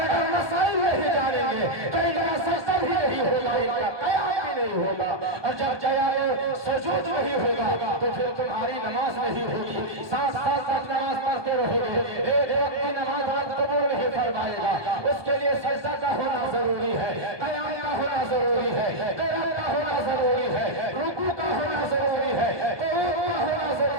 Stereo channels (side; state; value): left; late; 1.2 ms